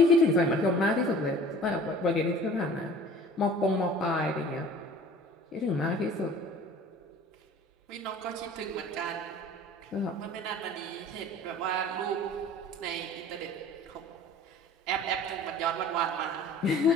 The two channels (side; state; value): both; normal; correlation 0.46